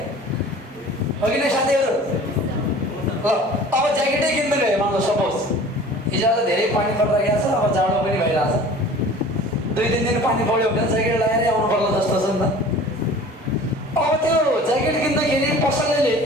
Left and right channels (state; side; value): normal; both; correlation 0.44